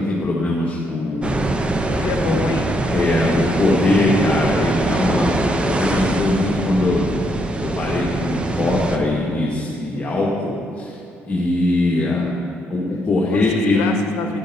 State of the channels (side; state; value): both; normal; correlation 0.76